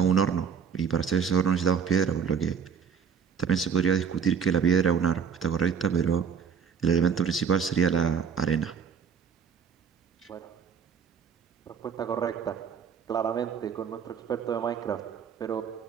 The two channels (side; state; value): left; quieter; 6.8 dB